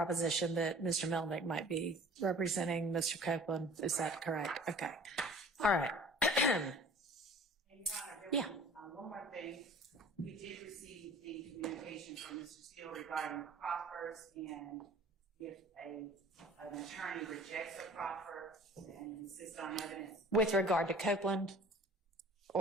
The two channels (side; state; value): both; normal; correlation 0.47